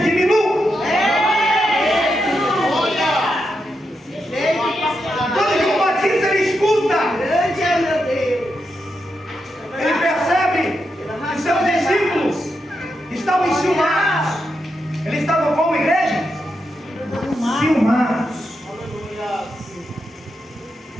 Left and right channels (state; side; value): normal; both; correlation 0.85